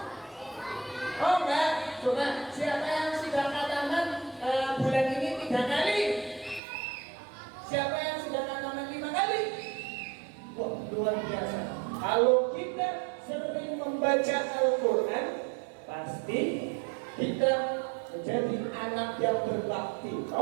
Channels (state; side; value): drops out; left; at 6.6 s